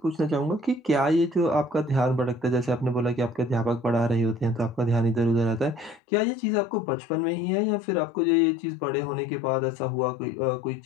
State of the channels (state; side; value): drops out; right; at 6.0 s